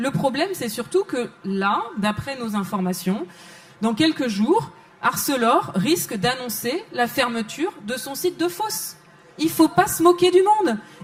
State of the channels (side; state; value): both; identical; correlation 1.00